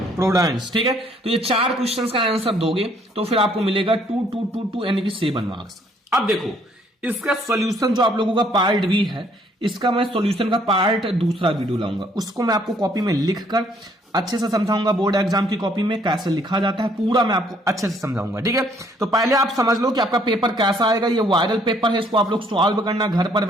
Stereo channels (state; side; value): normal; both; correlation 0.64